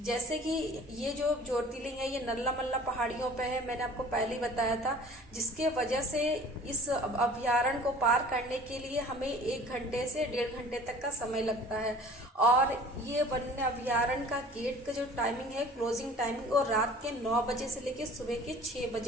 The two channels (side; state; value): both; normal; correlation 0.46